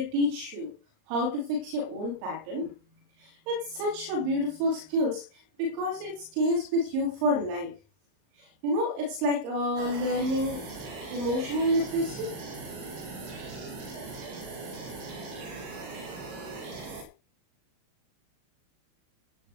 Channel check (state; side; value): late; left; 39 ms